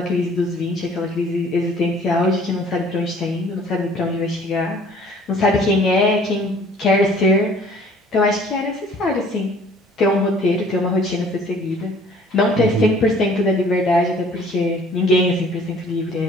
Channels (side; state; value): both; normal; correlation 0.54